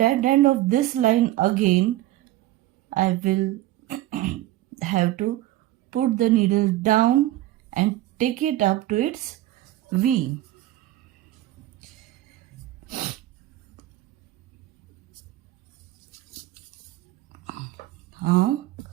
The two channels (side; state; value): left; quieter; 15.5 dB